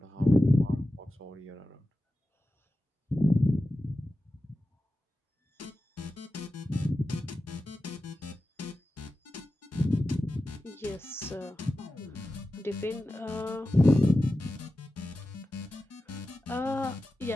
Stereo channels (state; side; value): normal; both; correlation 0.94